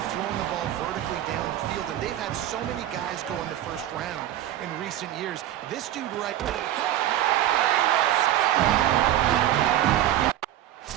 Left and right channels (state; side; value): quieter; left; 12.7 dB